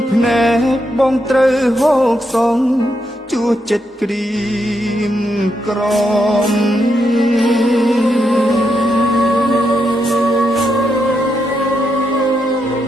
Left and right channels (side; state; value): both; normal; correlation 0.81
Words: ភ្នែកបងត្រូវហូកសងជួចិត្តក្រៀមក្រំ